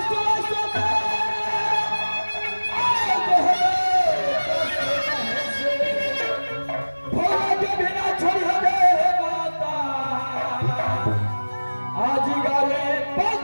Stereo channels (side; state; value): both; inverted; correlation -1.00